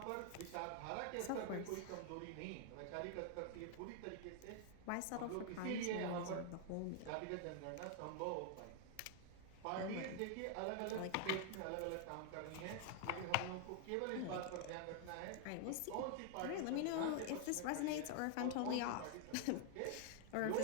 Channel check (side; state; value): both; different; correlation 0.00